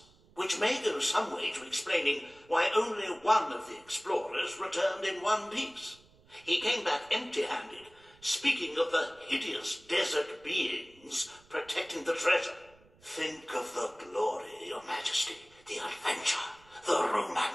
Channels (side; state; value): right; noise; rumble, 28 dB below the sound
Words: Which may go some way to explaining why only one of the explorers returned in one piece. He came back empty-handed, speaking of the hideous desert beings protecting the treasure. Think of the glory, Your Majesty, the adventure, the